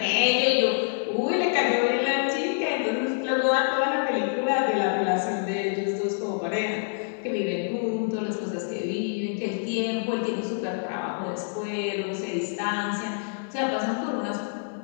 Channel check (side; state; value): right; silent; digital silence